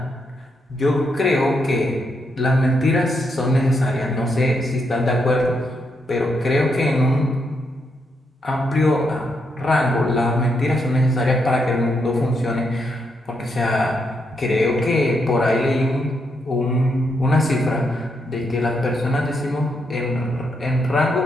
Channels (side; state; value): both; normal; correlation 0.79